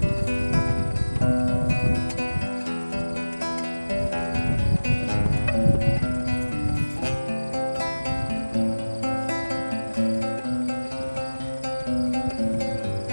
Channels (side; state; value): both; inverted; correlation -1.00